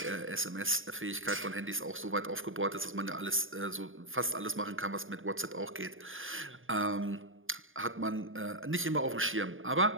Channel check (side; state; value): left; late; 0.59 ms